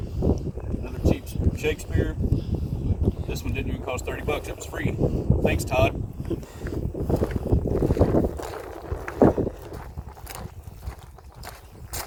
another cheap Shakespeare. This one didn't even cost $30, it was free. Thanks, Todd.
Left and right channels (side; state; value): both; identical; correlation 1.00